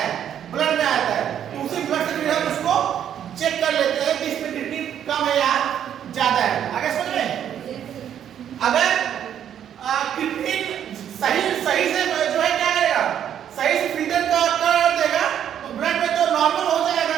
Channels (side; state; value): left; quieter; 9.7 dB